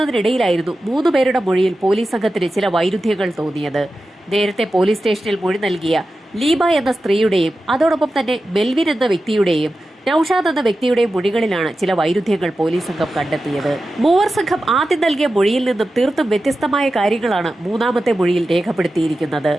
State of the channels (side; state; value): both; normal; correlation 0.93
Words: 3 പേരുടെ മൊഴിയിൽ പോലീസ് സംഘത്തിന് ചില വൈരുദ്ധ്യങ്ങൾ തോന്നിയത്. നേരത്തെ പോലീസ് സ്റ്റേഷനിൽ മൊഴി നൽകിയ ലീബ എന്ന സ്ത്രീയുടെയും അതോടൊപ്പം തന്നെ മെൽവിൻ എന്ന വ്യക്തിയുടെയും നൌഷാദ് എന്ന വ്യക്തിയുടെയും മൊഴികളിലാണ് ചില വൈരുദ്ധ്യങ്ങൾ പോലീസ് സംഘം കണ്ടെത്തിയത്. മൂവർ സംഘം ആദ്യം നൽകിയ മൊഴിയിൽ നിന്നും തീർത്തും വ്യത്യസ്തമായ കാര്യങ്ങളാണ് മൂന്നാമത്തെ മൊഴിയിൽ രേഖപ്പെടുത്തിയിരിക്കുന്നത്.